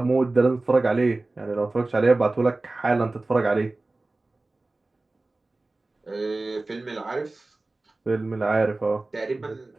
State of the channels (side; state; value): left; quieter; 3.1 dB